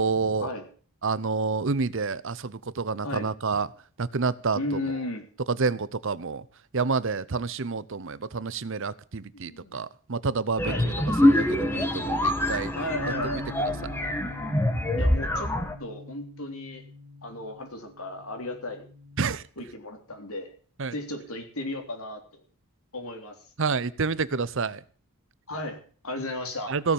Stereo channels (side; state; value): both; normal; correlation 0.28